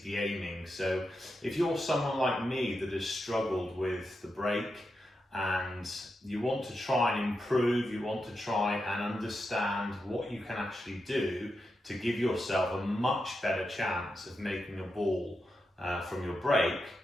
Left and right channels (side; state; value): both; normal; correlation 0.87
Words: be aiming. So if you're someone like me that has struggled with the break and you want to try and improve, you want to try and understand what you can actually do to give yourself a much better chance of making a ball from your break,